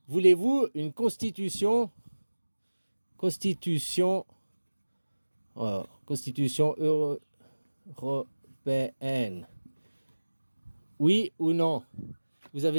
voulez-vous une constitution, constitution, constitution européenne? Oui ou non? Vous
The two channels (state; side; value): inverted; both; correlation -1.00